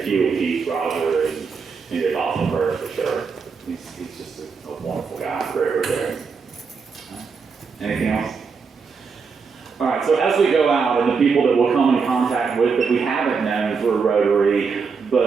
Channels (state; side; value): quieter; left; 5.3 dB